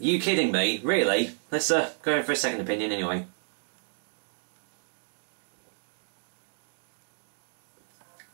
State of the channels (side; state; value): left; silent; 58 dB below the other